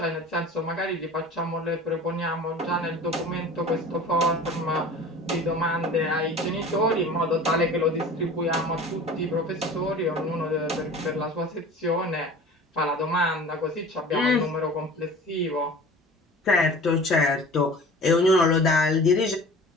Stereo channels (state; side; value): normal; both; correlation 0.41